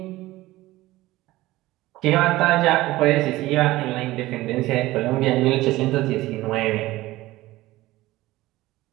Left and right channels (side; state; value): left; quieter; 17.7 dB